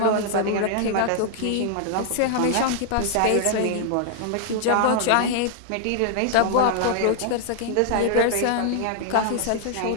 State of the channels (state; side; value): different; both; correlation 0.00